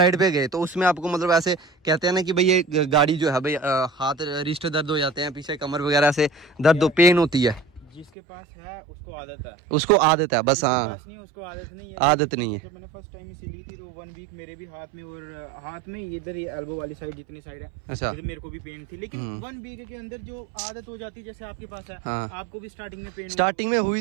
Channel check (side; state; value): left; drops out; at 8.1 s